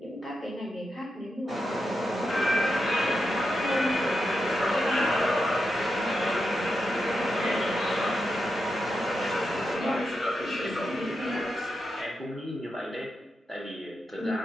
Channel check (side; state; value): both; normal; correlation 0.87